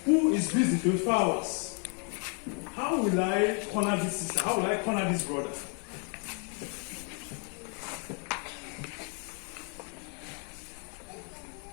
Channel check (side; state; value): right; quieter; 39.3 dB